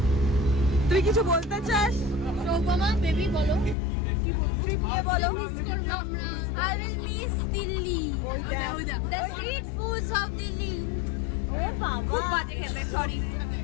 বেবি বলো কি বলবো I will miss Delhi. The street foods of Delhi. খুব বাজে খেতে সরি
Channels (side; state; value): right; drops out; at 3.8 s